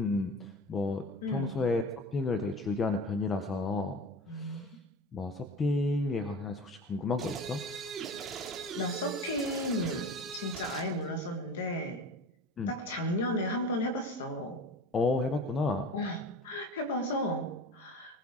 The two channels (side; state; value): both; normal; correlation 0.35